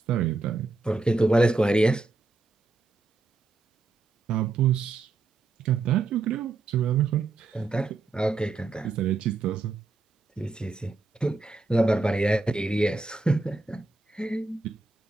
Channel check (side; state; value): left; quieter; 3.5 dB